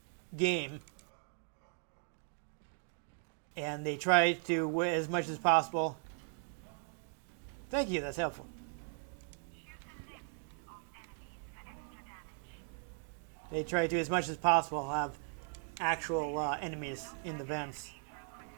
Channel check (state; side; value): silent; left; 52 dB below the other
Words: game. And they try to, as much as possible. Thank you, that's helpful. They try to, as much as possible, have actual enemies in the vents.